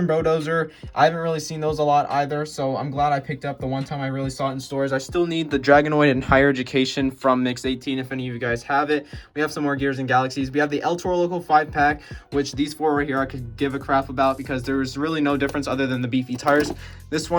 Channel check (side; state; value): both; identical; correlation 1.00